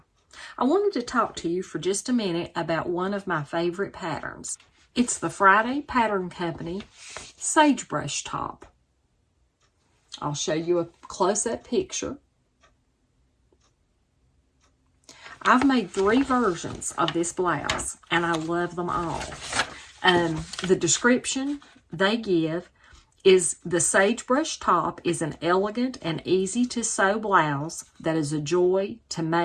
I wanted to talk to you for just a minute about one of my favorite patterns. It's the Friday Pattern Company Sagebrush top. I'll show you a close-up picture. I've made 3 versions of this blouse and I love them all. The description they give is the Sagebrush top is an elegant and easy to sew blouse that is a joy to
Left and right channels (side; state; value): both; identical; correlation 1.00